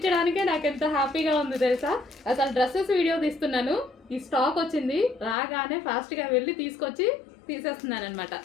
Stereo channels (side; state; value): right; drops out; at 5.4 s